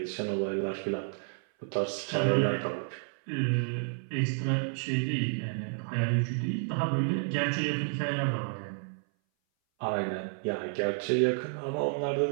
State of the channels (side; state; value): left; silent; 57 dB below the other